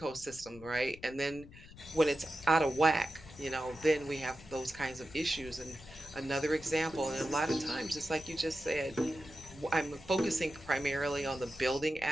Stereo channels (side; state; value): left; noise; rumble, 18 dB below the sound